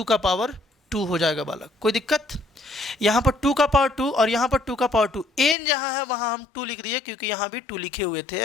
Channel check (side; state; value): right; drops out; at 5.6 s